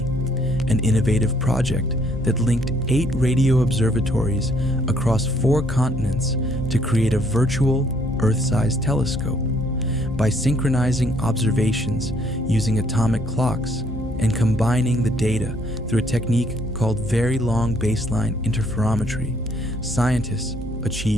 an innovative project that linked 8 radio observatories across 4 continents to create a virtual Earth-sized telescope. By synchronizing observations using atomic clocks and combining the data through a technique called very long baseline interferometry, scientists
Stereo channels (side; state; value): both; normal; correlation 0.65